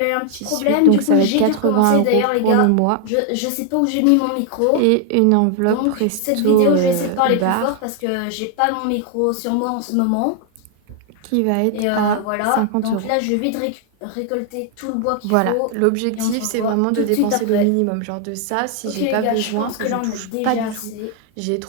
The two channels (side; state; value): both; different; correlation 0.00